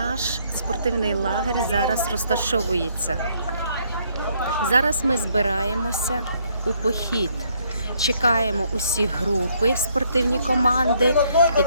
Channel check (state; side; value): inverted; both; correlation -0.69